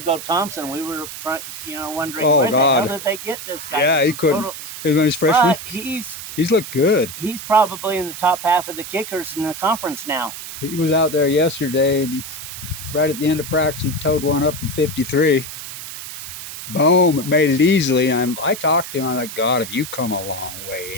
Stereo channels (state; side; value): noise; right; hiss, 10 dB below the sound